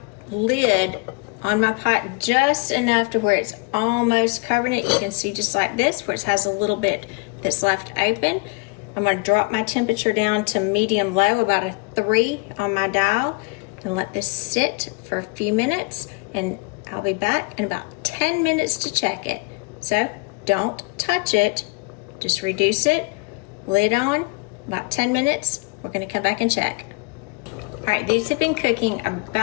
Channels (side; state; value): right; quieter; 29.1 dB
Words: lid on my pot just enough to where it's almost covering it. You can see just like this, where it has a little bit that's left open. I'm going to drop my temperature down to medium low, about a 3 on my dial, and let this sit for a few minutes, and I'll be back in about 10 minutes to check it. So don't touch it, just reduce it, lid on, about 10 minutes. We're going to come back and check. All right, these have been cooking